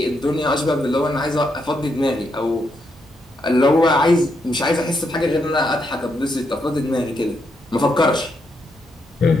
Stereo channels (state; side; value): normal; both; correlation 0.79